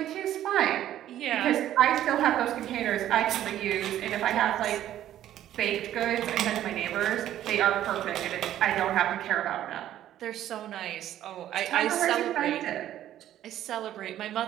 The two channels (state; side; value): quieter; left; 12.1 dB